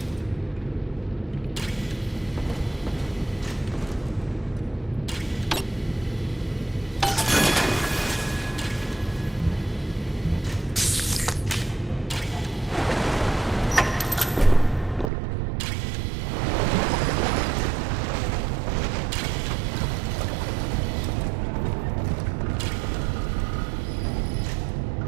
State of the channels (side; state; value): left; drops out; at 15.1 s